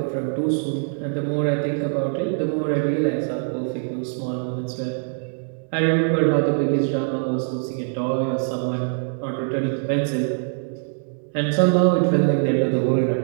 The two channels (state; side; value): silent; left; 63 dB below the other